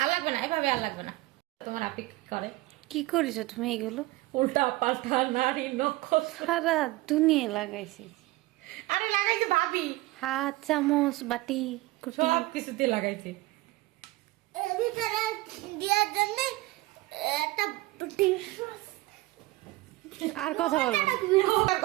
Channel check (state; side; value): quieter; left; 19.6 dB